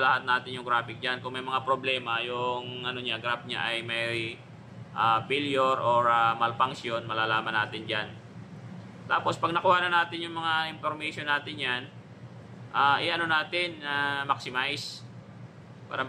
lahat natin yung graphic dyan. Kung may mga problema, yung graph niya ay may failure or malfunction, malalaman natin dyan. Tapos pag nakuha na natin yung mga information natin yan, maximize para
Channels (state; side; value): identical; both; correlation 1.00